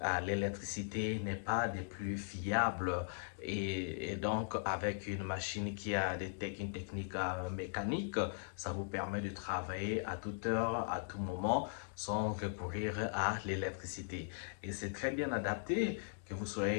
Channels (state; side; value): silent; right; digital silence